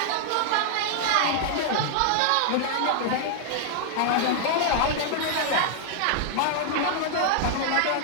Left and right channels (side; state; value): both; different; correlation 0.00